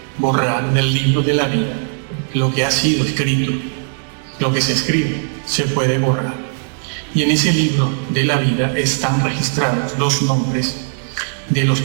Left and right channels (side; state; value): left; silent; digital silence